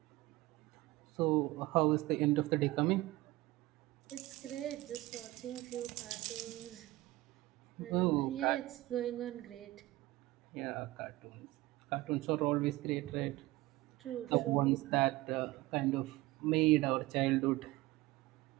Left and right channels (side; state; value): left; quieter; 19.1 dB